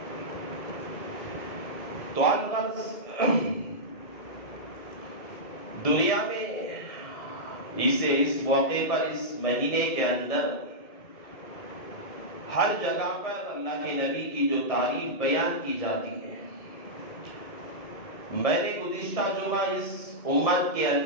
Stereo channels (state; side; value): late; right; 1.7 ms